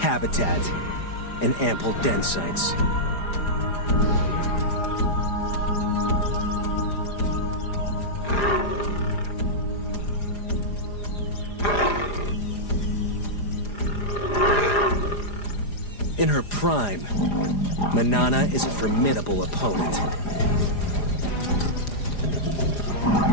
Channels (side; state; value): right; late; 4.9 ms